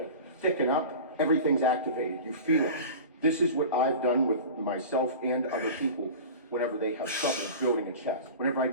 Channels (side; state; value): both; inverted; correlation -0.35